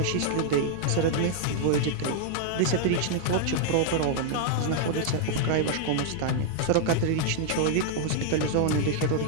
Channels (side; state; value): both; different; correlation -0.01